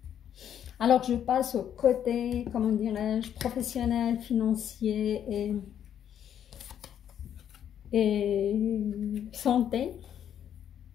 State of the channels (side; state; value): right; quieter; 9.6 dB